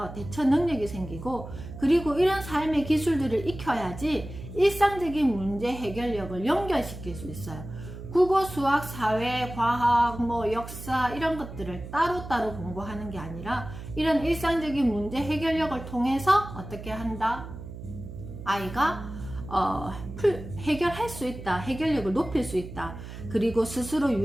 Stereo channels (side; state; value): right; noise; hum, 11 dB below the sound